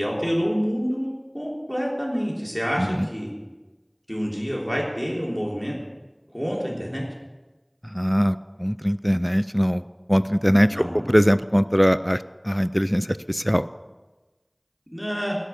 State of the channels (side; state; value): both; identical; correlation 1.00